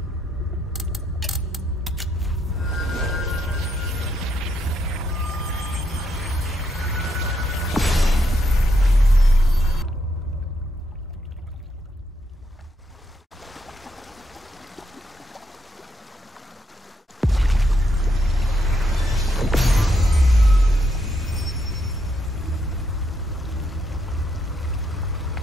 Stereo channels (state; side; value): normal; both; correlation 0.78